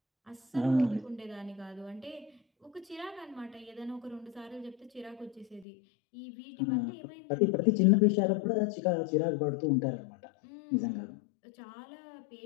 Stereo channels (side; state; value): right; drops out; at 5.7 s